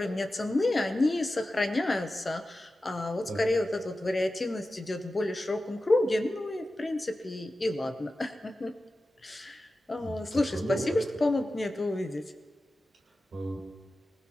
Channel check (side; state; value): both; normal; correlation 0.94